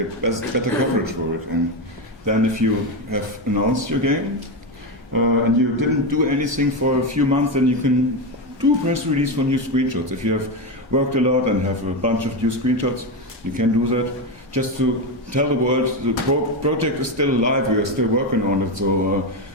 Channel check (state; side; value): normal; both; correlation 0.12